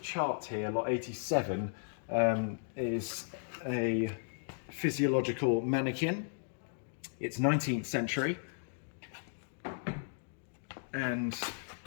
chart here, lot 87, is a physiological mannequin. It's 19th century, and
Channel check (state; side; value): silent; right; digital silence